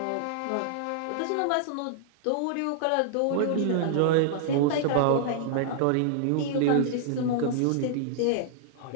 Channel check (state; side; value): different; both; correlation -0.01